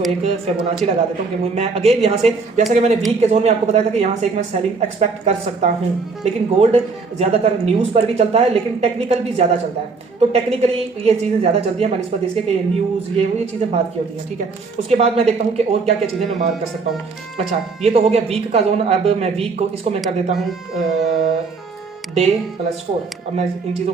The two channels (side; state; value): left; quieter; 4.4 dB